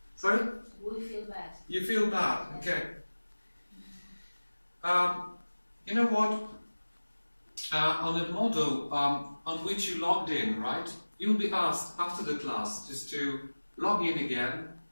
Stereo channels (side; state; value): both; inverted; correlation -1.00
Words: Sorry? We feel bad. You feel bad, okay. You know what? On the model on which you logged in, right? You'll be asked after the class just to log in again